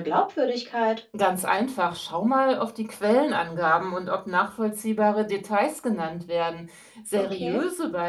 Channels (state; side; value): identical; both; correlation 1.00